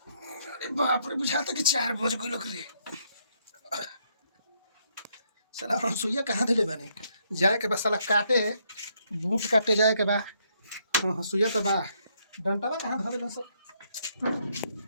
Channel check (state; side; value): inverted; both; correlation -0.73